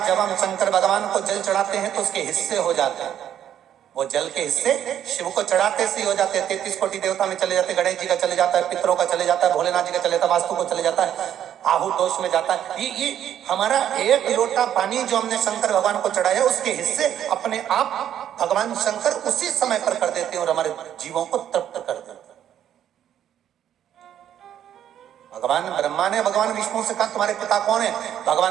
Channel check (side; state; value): left; quieter; 10.3 dB